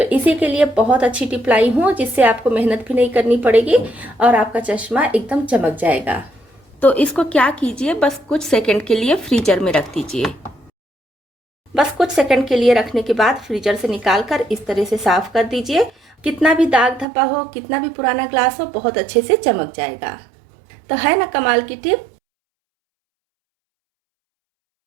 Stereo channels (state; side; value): drops out; left; at 17.1 s